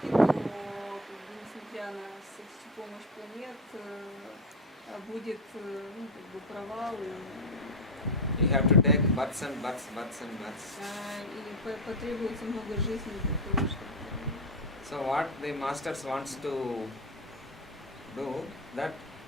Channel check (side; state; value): both; normal; correlation 0.12